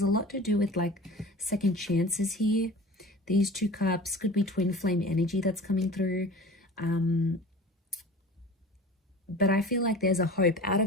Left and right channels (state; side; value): normal; both; correlation 0.39